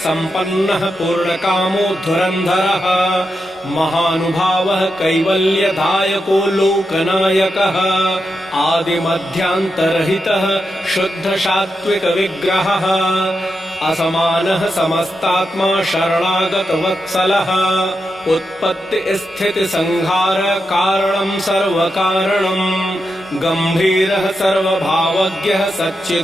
पूर्णकामो धुरन्धरः महानुभावः कैवल्यदायको लोकनायकः आदिमध्यान्तरहितः शुद्धसात्त्विकविग्रहः असमानः समस्तात्मा शरणागतवत्सलः उत्पत्तिस्थितिसंहार कारणं सर्वकारणम् गम्भीरः सर्वभावज्ञः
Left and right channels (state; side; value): normal; both; correlation 0.87